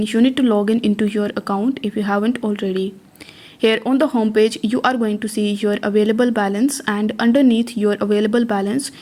you need to log in into your account if you haven't already. Here on the home page, you are going to see your available balance, and underneath your available balance,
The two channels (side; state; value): both; identical; correlation 1.00